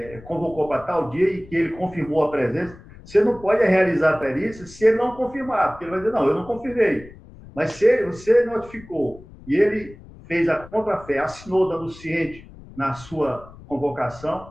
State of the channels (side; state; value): left; noise; rumble, 20 dB below the sound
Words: convocou para tal dia e que ele confirmou a presença. Você não pode realizar a perícia se ele não confirmar, porque ele vai dizer, não, eu não confirmei. Mas se você notificou e ele fez a contrafé, assinou dando ciente na sua convocação,